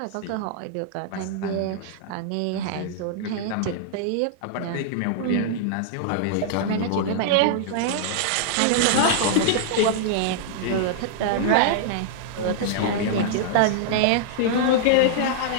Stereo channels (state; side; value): different; both; correlation -0.01